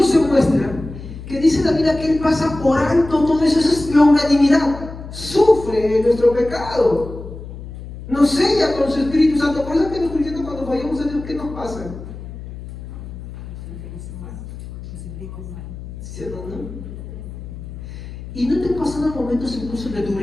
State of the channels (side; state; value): left; noise; hum, 12 dB below the sound